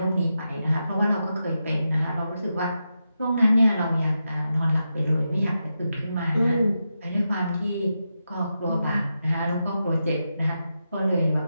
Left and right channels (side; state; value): both; inverted; correlation -0.88